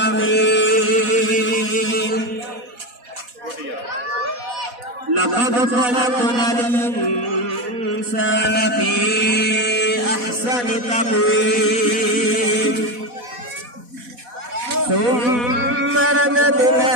لقد خلقنا الإنسان في أحسن تقويم ثم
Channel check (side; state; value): left; late; 4.1 ms